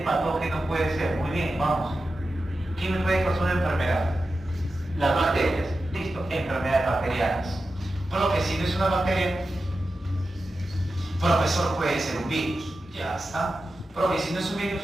puede ser? Muy bien, vamos. ¿Quién me puede causar una enfermedad? Las bacterias. Listo, enfermedades bacterianas. Profe, si no es una bacteria, profesor, puede ser un virus. Ya está. Profe, si no es un virus,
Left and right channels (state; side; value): normal; both; correlation 0.92